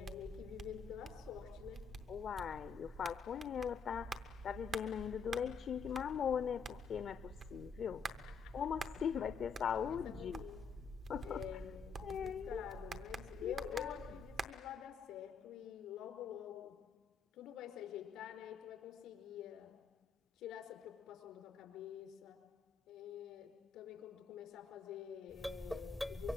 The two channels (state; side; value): quieter; right; 5.6 dB